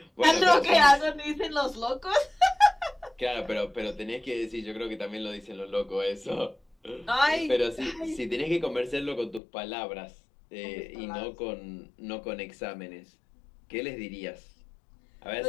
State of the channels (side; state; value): right; drops out; at 9.4 s